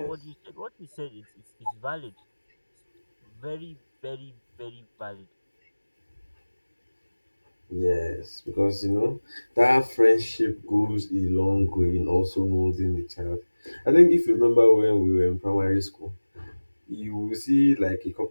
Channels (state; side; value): inverted; both; correlation -1.00